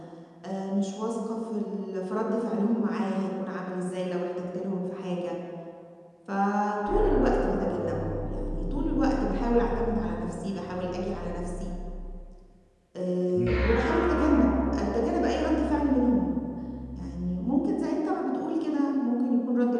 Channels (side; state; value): both; identical; correlation 1.00